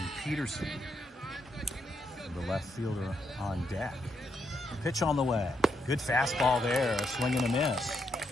Peterson, the left fielder, on deck. Pitch on the way. Good fastball there, a swing and a miss.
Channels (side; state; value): both; normal; correlation 0.79